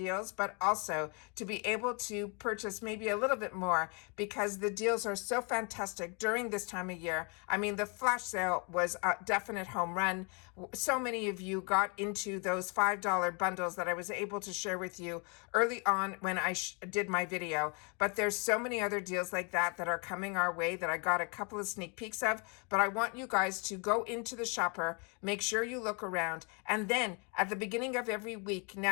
but also to be able to purchase maybe a little bit more because the deals are so fantastic during this time of year. I mean, the flash sale was a definite home run. So many of you got into those $5 bundles that I was able to share with you early on when I did my video. But there's so many other deals like that that are coming our way that I got a couple of sneak peeks of. But I want you guys to go into the shopper, make sure you look around, and then at the beginning of every week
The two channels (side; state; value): right; quieter; 34.5 dB